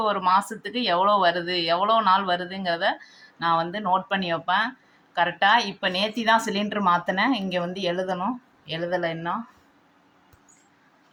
ஒரு மாதத்துக்கு எவ்வளோ வருது, எவ்வளோ நாள் வருதுங்கிறத நான் வந்து நோட் பண்ணி வைப்பேன் கரெக்டாக. இப்போ நேற்று தான் சிலிண்ட்ரு மாற்றினேன். இங்கே வந்து எழுதணும், எழுதலை இன்னும்.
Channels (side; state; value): both; identical; correlation 1.00